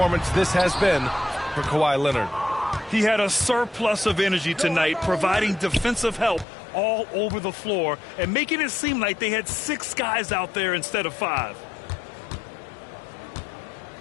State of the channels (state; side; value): drops out; right; at 6.5 s